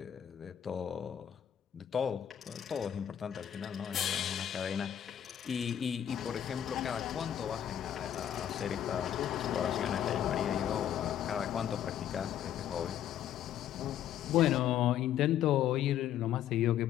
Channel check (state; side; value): quieter; right; 10.3 dB